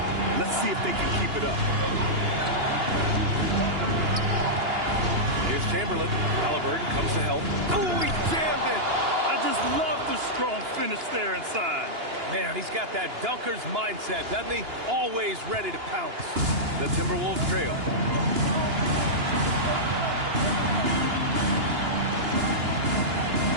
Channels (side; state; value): left; late; 2.9 ms